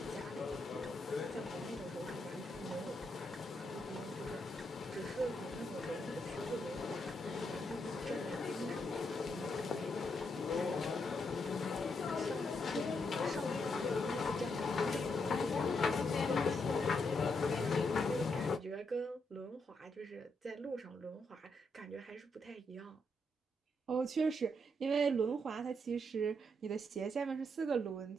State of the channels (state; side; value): normal; both; correlation 0.79